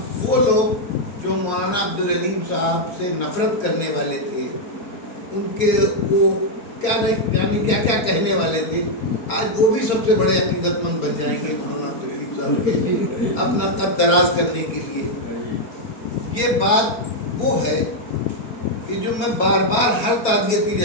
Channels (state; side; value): late; right; 4.6 ms